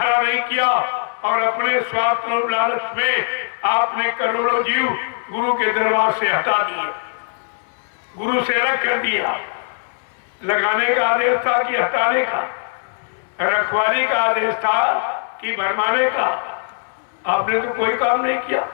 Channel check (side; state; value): right; silent; digital silence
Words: नहीं किया और अपने स्वार्थ और लालच में आपने करोड़ों जीव गुरु के दरबार से हटा दिए, गुरु से अलग कर दिया। लगाने का आदेश था कि हटाने का, रखवाली का आदेश था कि भरमाने का। आपने तो कोई काम नहीं किया,